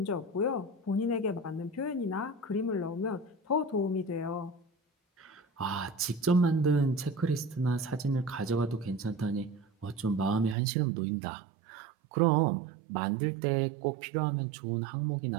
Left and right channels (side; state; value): left; drops out; at 10.6 s